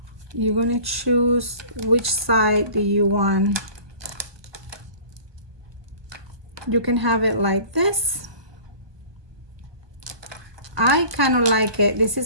you're gonna choose which side do you want. You can have it like this. I kind of like it. This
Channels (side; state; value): left; late; 1.2 ms